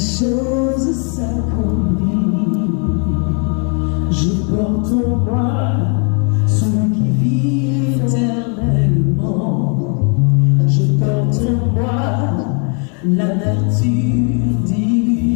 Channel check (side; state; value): right; quieter; 38.8 dB